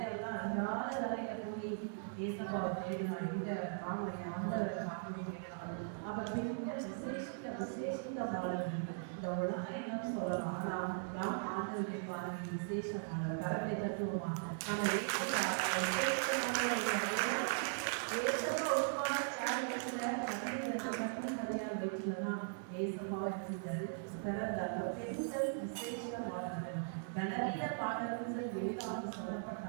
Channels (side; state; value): left; silent; digital silence